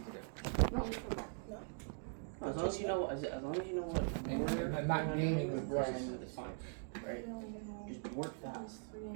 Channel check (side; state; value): left; silent; 50 dB below the other